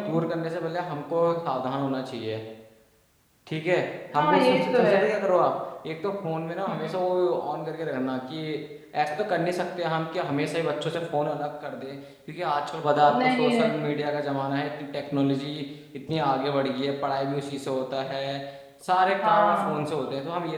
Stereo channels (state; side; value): identical; both; correlation 1.00